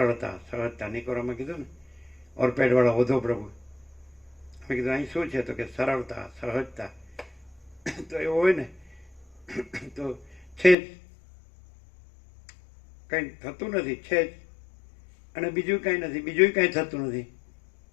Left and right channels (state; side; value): drops out; right; at 10.8 s